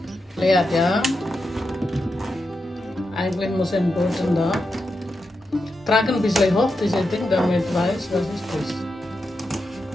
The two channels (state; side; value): normal; both; correlation 0.88